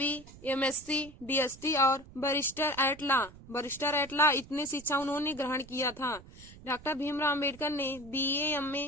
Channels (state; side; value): noise; right; rumble, 19 dB below the sound